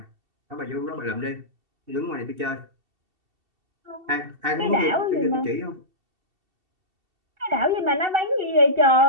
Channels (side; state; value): left; late; 2.7 ms